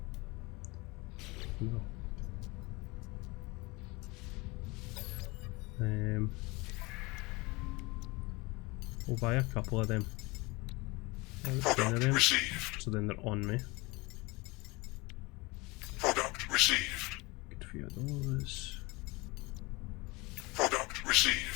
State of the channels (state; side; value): quieter; right; 24.6 dB